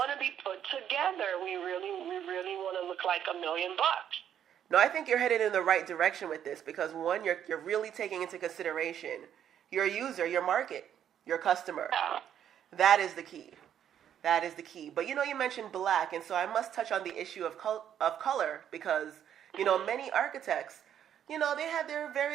to be put together. We really want to look like $1 million. No, I think you're headed in the right direction with this because one, you're really taking into consideration your user, your market, your customer. Yeah. That is the key. That is the key. But you mentioned black, and so I must touch on the issue of color because many architects, they have their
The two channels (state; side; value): quieter; left; 9.7 dB